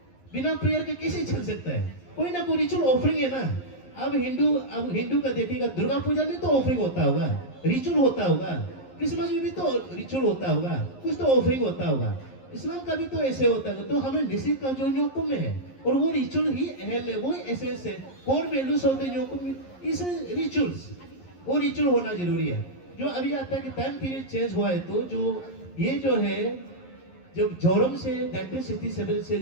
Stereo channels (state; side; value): late; right; 11 ms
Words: बिना प्रेयर के कैसे चल सकता है, कोई ना कोई रिचुअल ऑफरिंग है ना। अब हिंदू का देखिएगा, दुर्गा पूजा में तो ऑफरिंग होता होगा, रिचुअल होता होगा, क्रिसमस में भी तो रिचुअल होता होगा, कुछ तो ऑफरिंग होता होगा, इस्लाम का भी तो ऐसे होता है। तो हमें निश्चित का जो न्योकुम में है, और वो रिचुअल ही अहम है, वो एसेंस है, core values of the Nyokum इस रिचुअल्स, वो रिचुअल होना जरूरी है। जो अभी आता है कि टाइम पीरियड चेंज हुआ है, तो जो ये जो है, जब जोरम से 1967 से